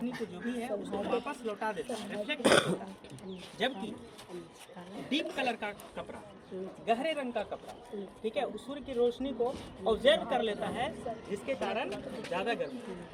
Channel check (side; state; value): both; identical; correlation 1.00